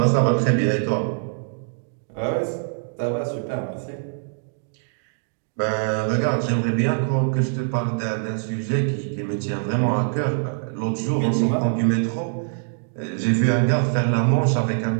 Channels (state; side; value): silent; left; digital silence